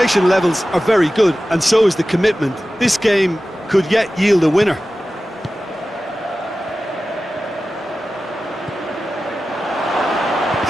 levels are very good, and so is the commitment. This game could yet yield a winner.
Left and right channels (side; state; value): both; normal; correlation 0.95